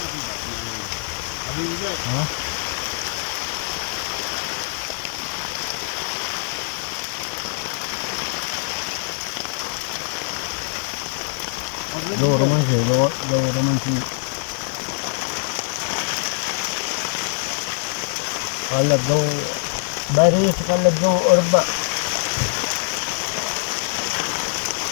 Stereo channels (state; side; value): silent; right; 63 dB below the other